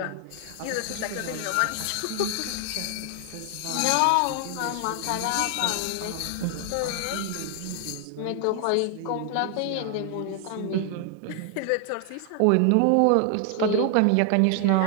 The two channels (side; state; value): both; different; correlation 0.00